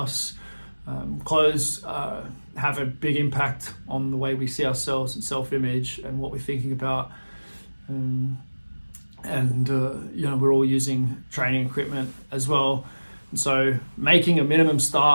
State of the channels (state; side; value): inverted; both; correlation -1.00